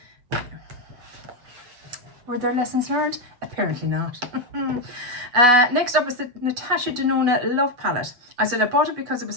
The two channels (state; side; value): late; left; 8.2 ms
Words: Were there lessons learned? Apparently not. Next up is the Natasha Denona Love Palette. I said I bought it because it was